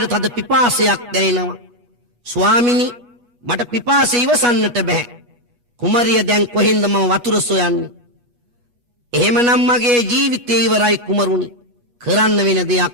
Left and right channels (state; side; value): late; left; 8.3 ms